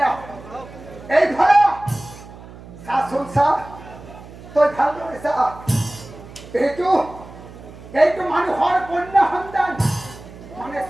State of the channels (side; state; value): right; noise; hum, 17 dB below the sound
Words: এই ভাড়া শাসন সাহ তোর ভালো এইটো মানুহৰ কন্যা সন্তান মানে